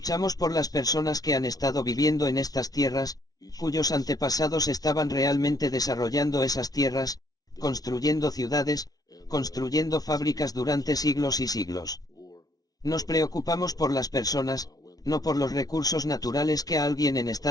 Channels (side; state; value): right; late; 0.18 ms